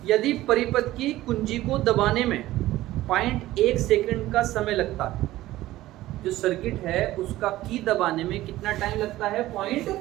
यदि परिपथ की कुंजी को दबाने में 0.1 सेकंड का समय लगता है, जो सर्किट है उसका की दबाने में कितना टाइम लगता है? 0.1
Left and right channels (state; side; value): quieter; left; 15.9 dB